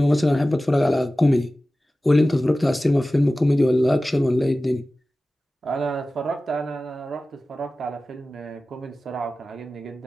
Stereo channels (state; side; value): normal; both; correlation 0.96